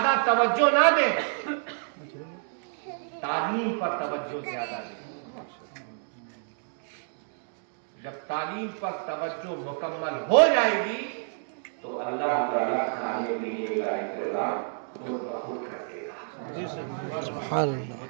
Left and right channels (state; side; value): silent; left; digital silence